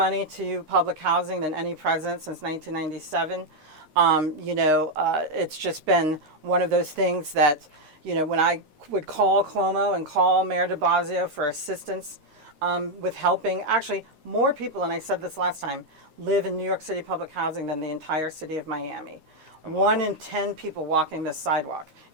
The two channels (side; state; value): left; late; 10 ms